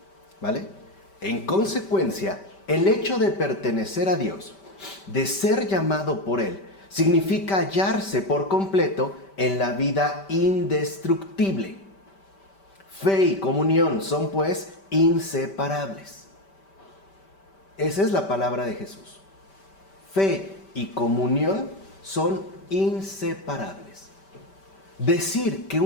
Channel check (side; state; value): right; late; 5.1 ms